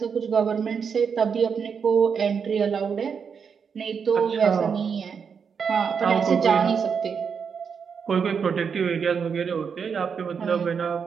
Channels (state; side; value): quieter; left; 6.4 dB